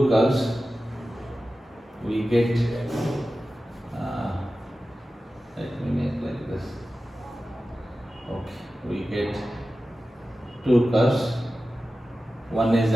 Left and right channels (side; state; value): both; normal; correlation 0.94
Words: curves. We get let me make like this. Okay, we get two curves. One is